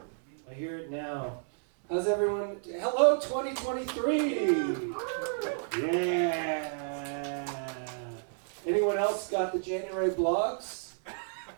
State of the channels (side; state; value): left; silent; digital silence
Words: I hear it now. How's everyone? Hello, 2023. Yeah. Anyone else got the January blogs?